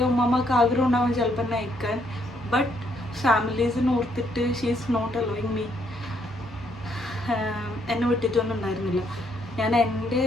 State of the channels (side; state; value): both; normal; correlation 0.71